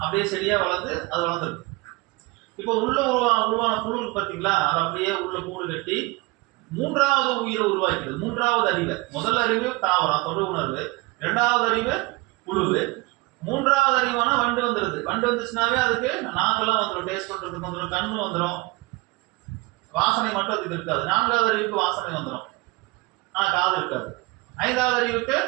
செடியா வளர்ந்து அது வளர்ந்துருக்கு. இப்போ உள்ள உருவான புழு பார்த்தீங்களா, அது அப்படியே உள்ள கூடு கட்டி 3வது உயிரை உருவாக்கிறது. 3வது அறிவு. முதல் அறிவு தாவரம் தொடு உணர்வு, 2வது அறிவு புழுவு, 3வது அறிவான வண்டு வந்துருது. வண்டு வந்துச்சுனாவே அதுக்கு நாக்கெல்லாம் வந்துடும், டேஸ்ட் பண்றதுக்கு வந்துடும், கண்ணு வந்துடும், வாசனை மட்டும் அதுக்கு இருக்காது. 4வது அறிவுக்கு வாசனை வந்துடும், ஆனா காது இருக்காது. 5வது அறிவுக்கு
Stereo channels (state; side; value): quieter; left; 23.8 dB